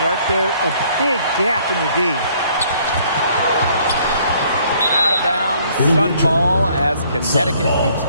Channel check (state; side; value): inverted; both; correlation -0.62